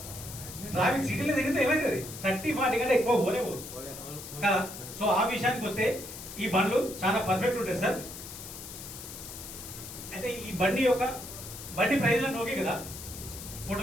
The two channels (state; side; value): noise; left; hiss, 11 dB below the sound